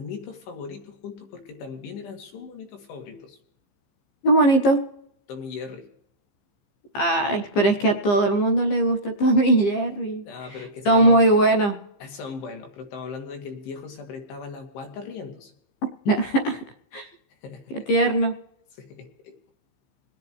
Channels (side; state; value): right; late; 15 ms